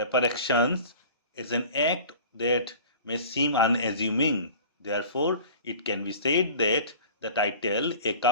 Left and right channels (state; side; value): inverted; both; correlation -0.43